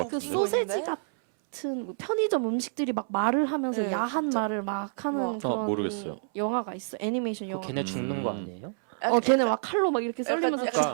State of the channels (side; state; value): left; silent; 59 dB below the other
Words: 그 같은데? 소세지 같은 편의점 음식들이 막 말을 하면서 네, 야한 진짜. 말을 막 하는 그런 모르겠어요. 영화가 있어. 애니메이션 영화. 걔네 죽는 거 아니에요? 걔네 막 칼로 막 이렇게 썰리면서 약간